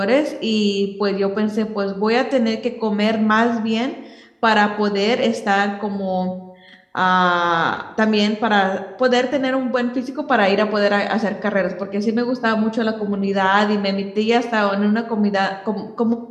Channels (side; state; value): both; identical; correlation 1.00